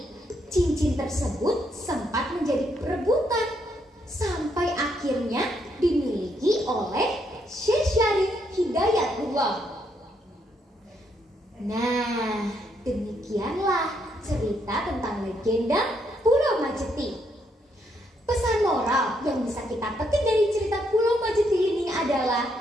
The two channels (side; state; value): both; normal; correlation 0.75